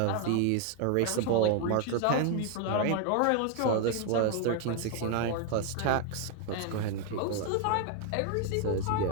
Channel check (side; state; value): both; different; correlation 0.01